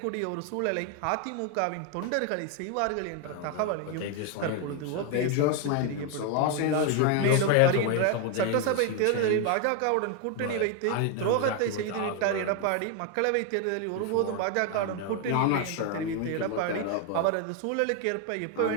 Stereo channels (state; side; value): different; both; correlation 0.01